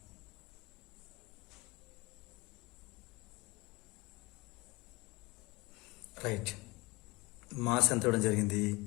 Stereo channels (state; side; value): quieter; right; 23.6 dB